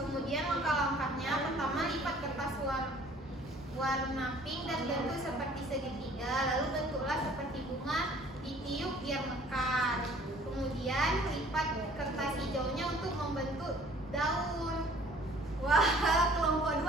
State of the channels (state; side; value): normal; both; correlation 0.54